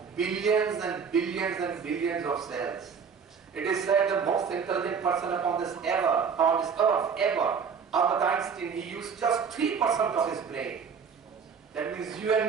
billions and billions and billions of cells. It is said the most intelligent person upon this earth, Albert Einstein, he used just 3% of his brain. That means you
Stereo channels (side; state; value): left; quieter; 6.3 dB